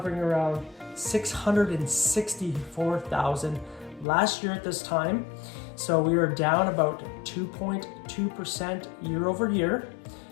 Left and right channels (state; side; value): drops out; right; at 4.0 s